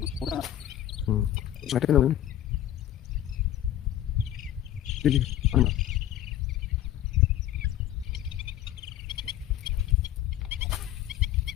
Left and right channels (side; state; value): right; quieter; 12.3 dB